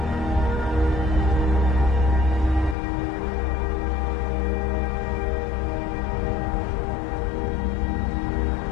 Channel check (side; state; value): right; drops out; at 2.8 s